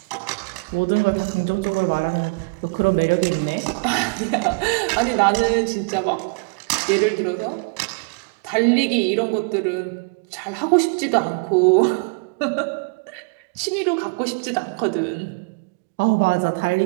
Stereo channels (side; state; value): left; quieter; 33.5 dB